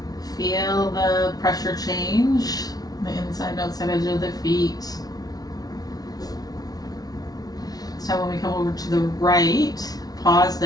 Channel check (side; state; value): right; late; 0.19 ms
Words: Feel the pressure change, the inside and outside edge of the feet. So when we come over to the right, pause